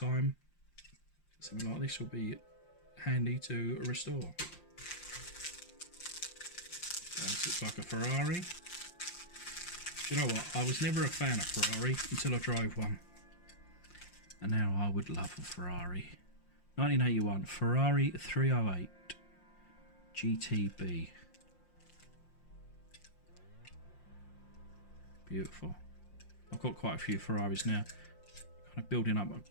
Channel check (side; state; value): right; late; 5.7 ms